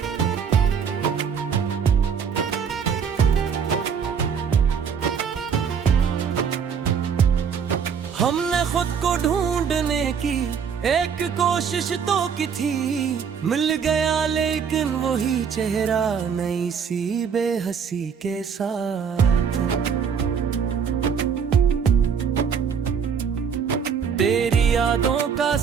हमने खुद को ढूंढने की एक कोशिश तो की थी, मिल गया लेकिन वही चेहरा नई सी बेहसी के साथ। तेरी यादों का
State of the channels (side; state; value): left; quieter; 6.9 dB